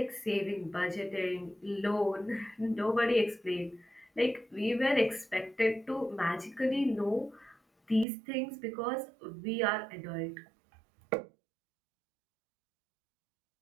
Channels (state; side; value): drops out; left; at 8.1 s